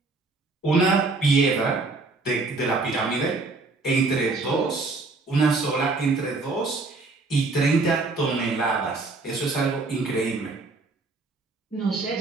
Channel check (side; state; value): left; quieter; 3.6 dB